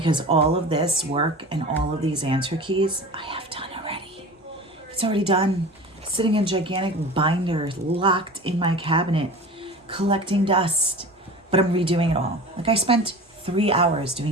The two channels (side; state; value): both; normal; correlation 0.35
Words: all of this work and all of these answer keys I have done already. It's already done. Sitting in gigantic binders locked in my cabinet, collecting dust. But I'm redoing it all. Like, I spent 3 hours